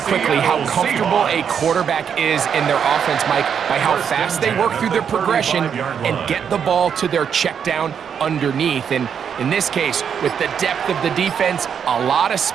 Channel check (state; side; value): quieter; left; 7.6 dB